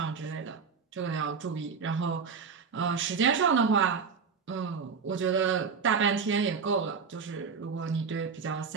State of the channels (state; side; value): quieter; left; 5.7 dB